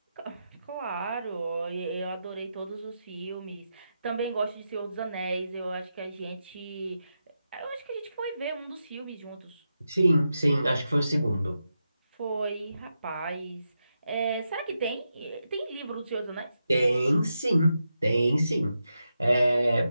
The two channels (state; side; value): inverted; both; correlation -0.87